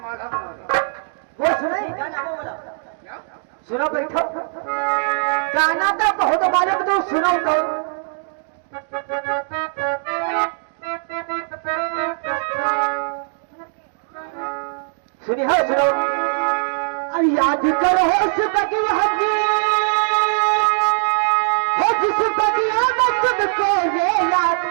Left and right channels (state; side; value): silent; left; digital silence